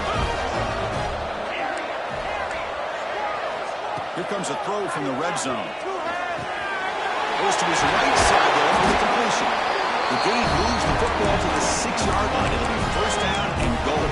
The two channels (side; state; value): both; identical; correlation 1.00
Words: Here comes a throw from the red zone. Goes to his right side there for the completion. The gain moves the football to the 6-yard line. It'll be 1st down and goal.